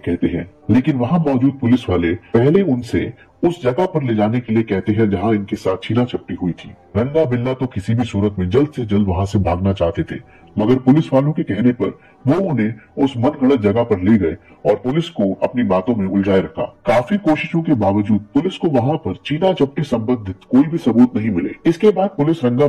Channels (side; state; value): both; identical; correlation 1.00